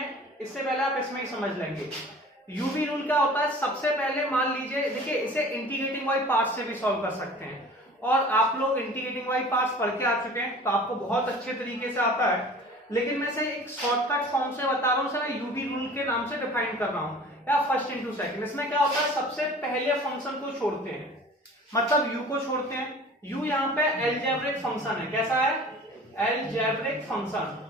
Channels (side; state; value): both; normal; correlation 0.44